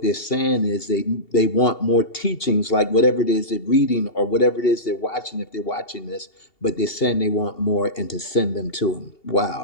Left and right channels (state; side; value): late; right; 2.8 ms